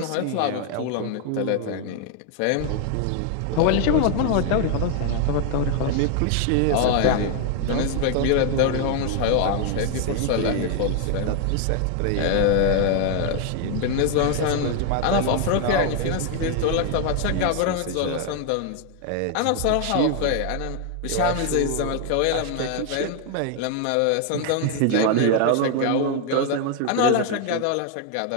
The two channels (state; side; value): different; both; correlation 0.00